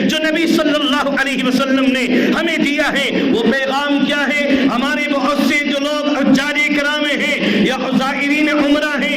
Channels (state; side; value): identical; both; correlation 1.00